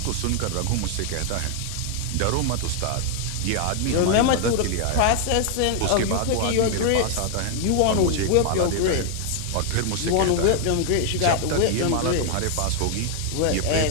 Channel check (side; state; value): both; different; correlation 0.00